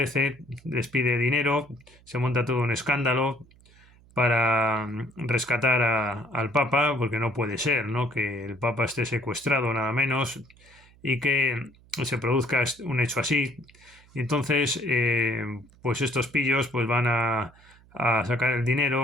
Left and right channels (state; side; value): noise; right; hum, 27 dB below the sound